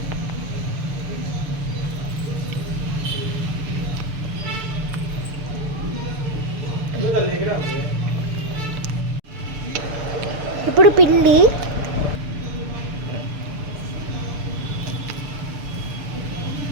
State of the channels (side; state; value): left; late; 6.8 ms